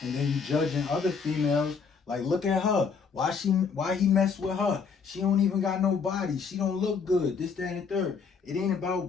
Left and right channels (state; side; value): quieter; right; 5.6 dB